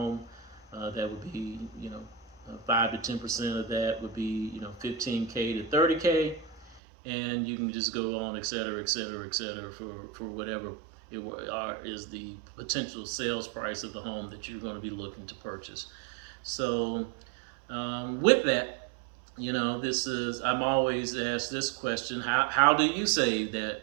that would be, you know, 5 to 10% of that would be, you know, 15K to 30K, and you can just go on, et cetera, for whatever is the potential sales price of the home that you're going to be looking to purchase. So with that, I'm always asked this question: how do you save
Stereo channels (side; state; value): left; drops out; at 6.8 s